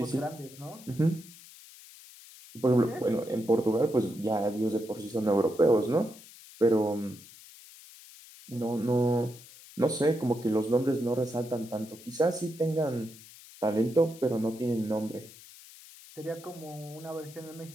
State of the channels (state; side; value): noise; left; hiss, 19 dB below the sound